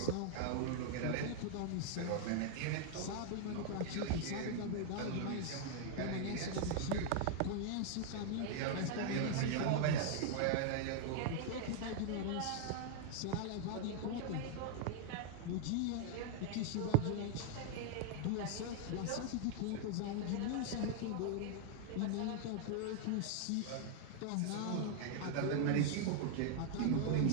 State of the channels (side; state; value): both; different; correlation 0.00